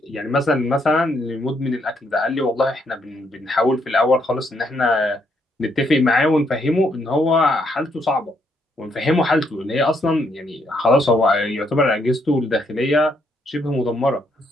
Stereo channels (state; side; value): normal; both; correlation 0.74